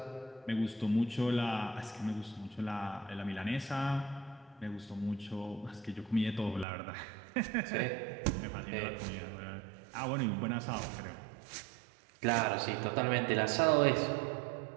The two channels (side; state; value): left; drops out; at 6.7 s